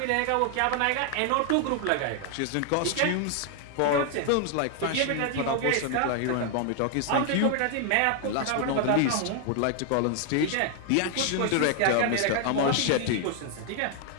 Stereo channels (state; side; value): different; both; correlation 0.00